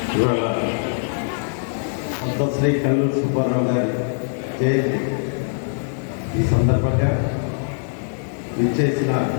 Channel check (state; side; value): silent; right; 64 dB below the other